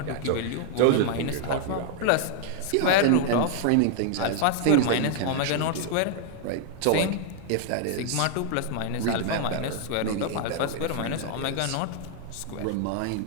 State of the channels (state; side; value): different; both; correlation 0.00